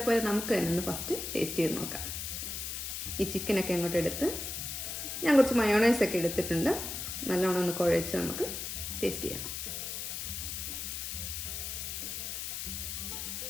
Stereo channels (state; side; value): noise; left; hiss, 5 dB below the sound